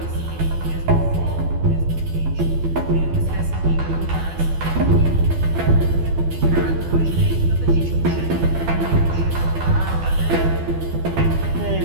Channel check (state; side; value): late; left; 12 ms